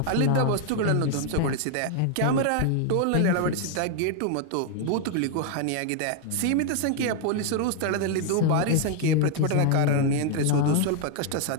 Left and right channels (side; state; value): both; different; correlation 0.00